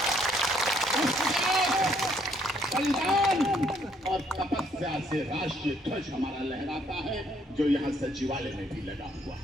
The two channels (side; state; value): both; normal; correlation 0.68